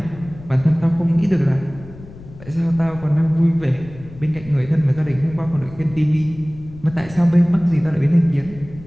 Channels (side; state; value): left; noise; rumble, 18 dB below the sound